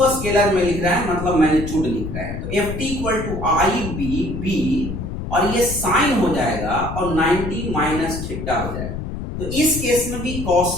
स्केलर में लिख रहा है, मतलब मैग्नीट्यूड लिख रहा है, तो FT इक्वल टू IB और ये साइन हो जाएगा और 90 माइनस थीटा हो जाएगा। तो इस केस में भी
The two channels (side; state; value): left; noise; rumble, 6 dB below the sound